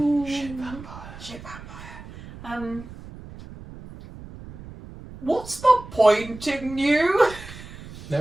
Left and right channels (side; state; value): right; noise; rumble, 15 dB below the sound